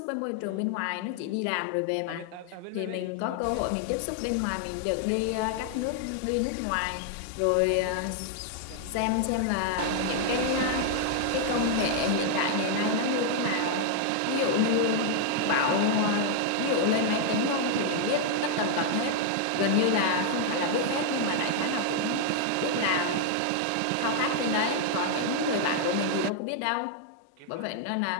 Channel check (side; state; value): both; different; correlation 0.00